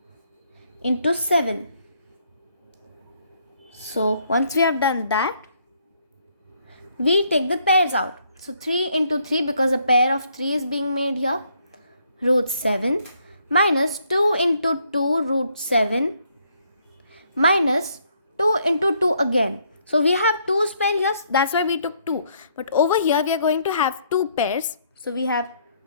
into 7. So once we have done that, we take the pairs out. So 3 into 3, because a pair of 3 is being made here, root 7 minus 2 into 2 root 7 minus 2 into 2 again. So we have 2's pair here, that's why we took 2. But over here we are going to have 2 pairs. So we have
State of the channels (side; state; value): both; inverted; correlation -0.70